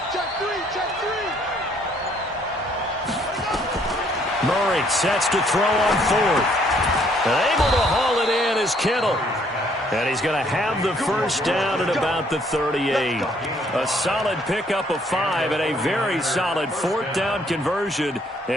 Check 3. Check 3. Murray sets to throw on fourth. And able to haul it in is Kittle. And he's going to have the first down at about the 38. A solid pickup of 5 and a very solid fourth down conversion.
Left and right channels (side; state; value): both; normal; correlation 0.65